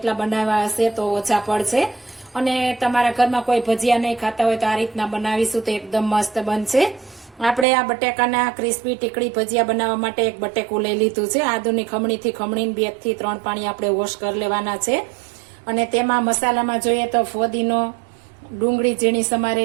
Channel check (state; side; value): drops out; left; at 7.7 s